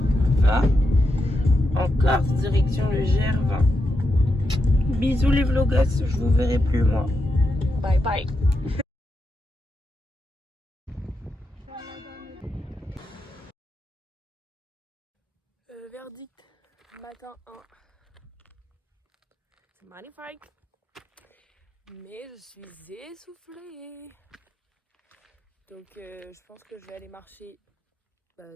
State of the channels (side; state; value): both; normal; correlation 0.86